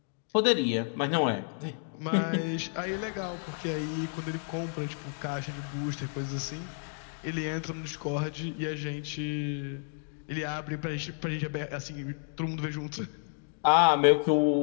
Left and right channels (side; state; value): right; silent; 57 dB below the other